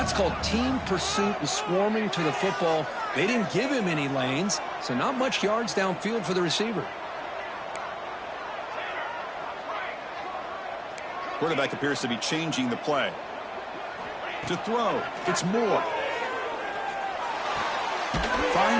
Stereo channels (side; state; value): both; identical; correlation 1.00